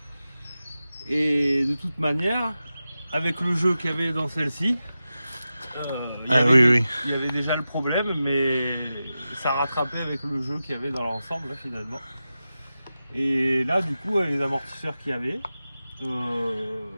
Et de toute manière, avec le jeu qu'il y avait dans celle-ci, il y avait déjà le problème, mais ça rattrapait avec le jeu qu'il y avait dans l'ensemble là, finalement. Et là du coup les amortisseurs qu'il y avait,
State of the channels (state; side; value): inverted; both; correlation -0.93